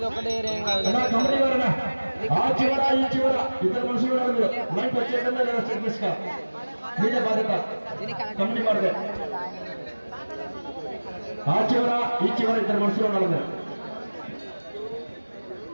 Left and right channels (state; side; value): inverted; both; correlation -1.00